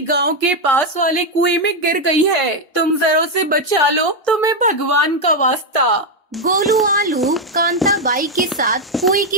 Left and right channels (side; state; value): both; normal; correlation 0.03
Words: गांव के पास वाले कुएं में गिर गई है। तुम जरा उसे बचा लो, तुम्हें भगवान का वास्ता। गोलू आलू कांता बाई के साथ कुएं